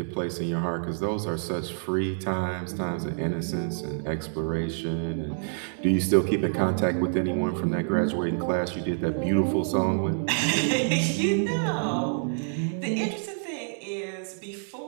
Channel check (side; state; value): left; silent; 60 dB below the other